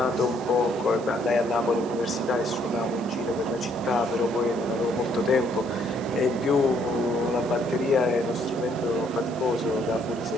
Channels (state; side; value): noise; right; hiss, 22 dB below the sound